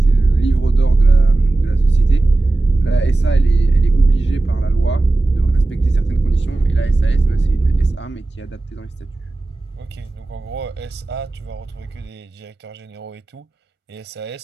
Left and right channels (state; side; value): quieter; left; 3.0 dB